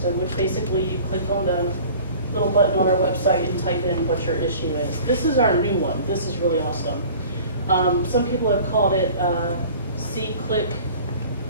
which basically you click on the little button on our website and type in what your issue is. This is our new one. This is really awesome. Some people have called it C-Click,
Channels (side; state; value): both; inverted; correlation -0.45